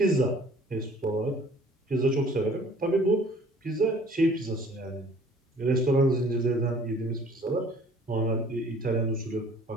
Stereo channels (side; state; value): both; normal; correlation 0.53